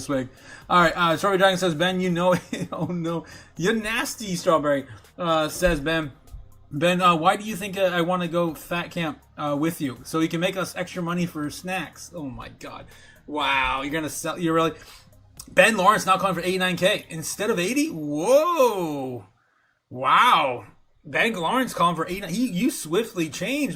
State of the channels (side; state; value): both; identical; correlation 1.00